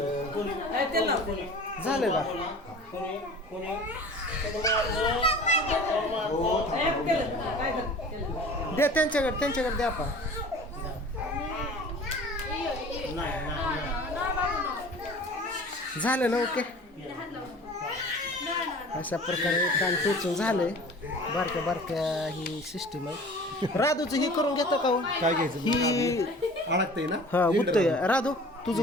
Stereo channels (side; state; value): both; normal; correlation 0.43